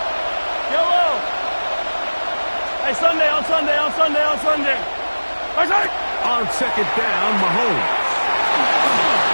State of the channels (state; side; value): inverted; both; correlation -1.00